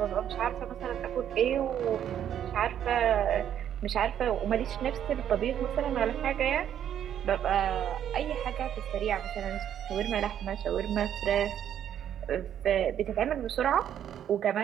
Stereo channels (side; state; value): left; quieter; 9.9 dB